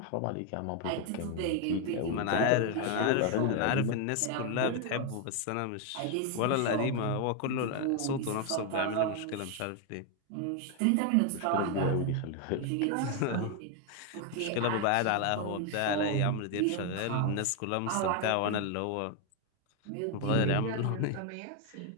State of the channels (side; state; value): both; different; correlation 0.01